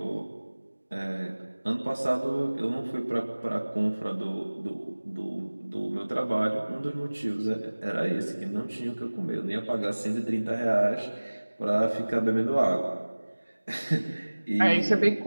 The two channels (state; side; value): inverted; both; correlation -1.00